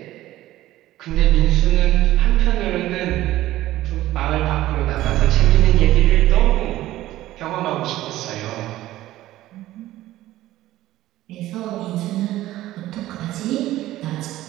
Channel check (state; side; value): quieter; left; 15.2 dB